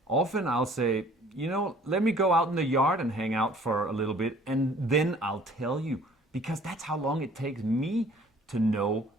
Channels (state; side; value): normal; both; correlation 0.54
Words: Often I'll say, let me go out in the yard and hang out for a little bit, and then I'll tell you. Because that's how long it takes me to know